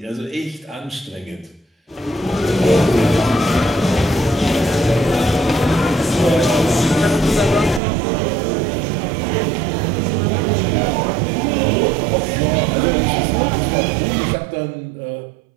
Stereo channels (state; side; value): drops out; left; at 7.8 s